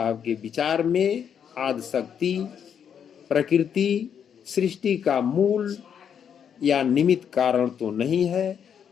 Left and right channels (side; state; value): right; quieter; 8.0 dB